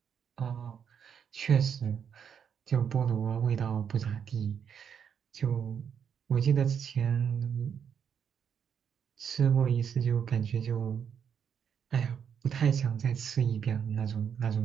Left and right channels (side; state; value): left; quieter; 7.7 dB